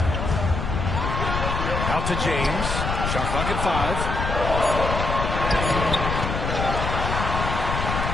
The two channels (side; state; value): left; noise; rumble, 2 dB below the sound